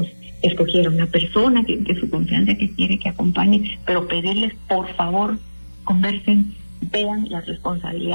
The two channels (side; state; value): both; inverted; correlation -1.00